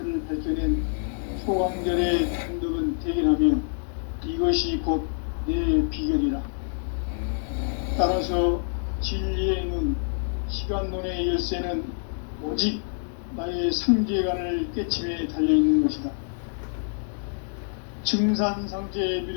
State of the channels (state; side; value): silent; right; digital silence